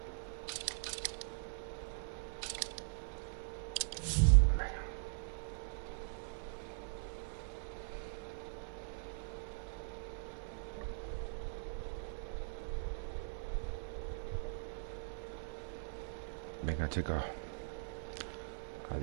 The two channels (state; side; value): silent; left; 50 dB below the other